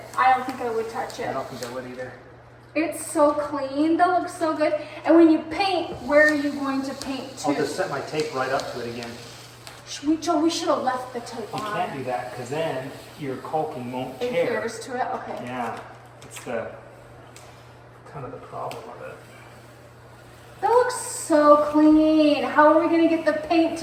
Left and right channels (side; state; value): both; identical; correlation 1.00